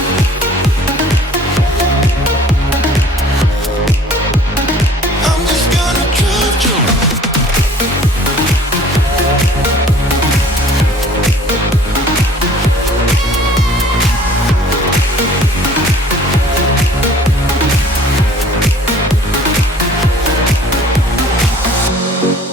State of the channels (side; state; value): both; normal; correlation 0.51